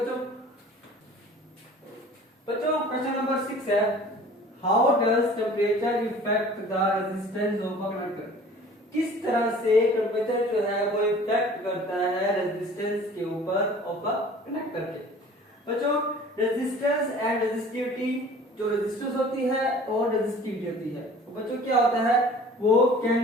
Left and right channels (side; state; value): both; normal; correlation 0.47